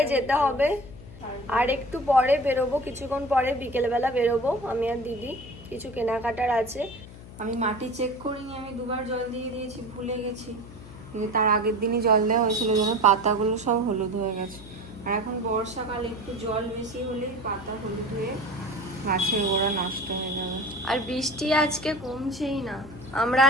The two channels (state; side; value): noise; left; hum, 16 dB below the sound